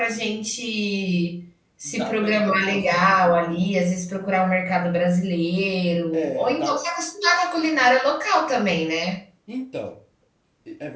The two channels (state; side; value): identical; both; correlation 1.00